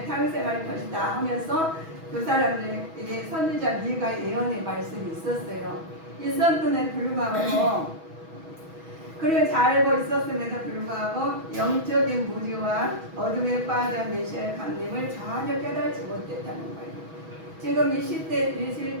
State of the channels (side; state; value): left; late; 6.2 ms